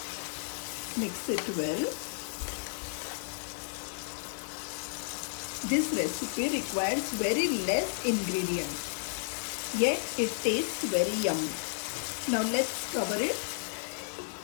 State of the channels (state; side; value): silent; right; 56 dB below the other